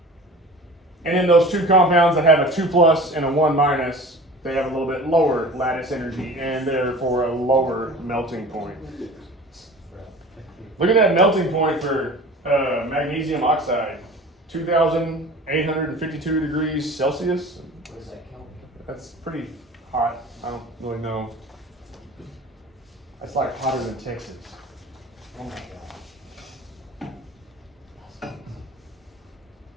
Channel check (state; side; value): normal; both; correlation 0.40